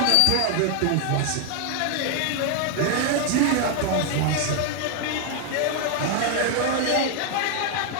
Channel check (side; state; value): both; different; correlation 0.00